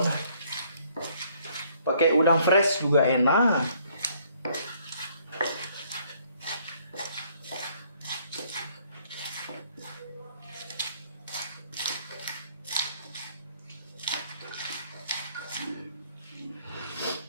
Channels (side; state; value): both; inverted; correlation -0.64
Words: Pakai udang fresh juga enak.